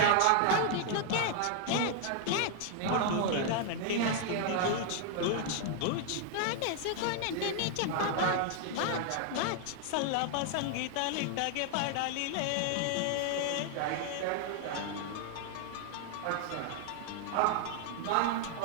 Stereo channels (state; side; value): different; both; correlation 0.00